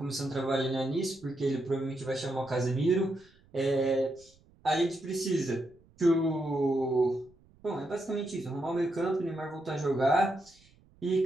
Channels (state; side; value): noise; right; rumble, 29 dB below the sound